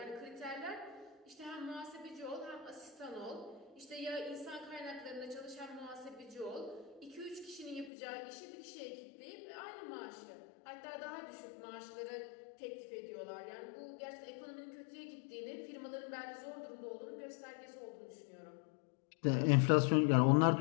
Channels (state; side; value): drops out; right; at 7.9 s